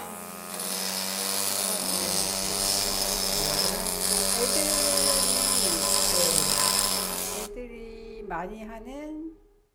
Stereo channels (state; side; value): identical; both; correlation 1.00